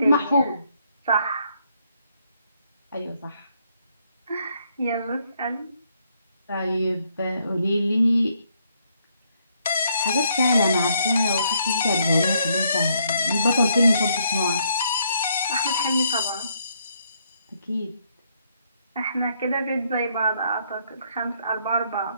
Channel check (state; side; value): inverted; both; correlation -0.72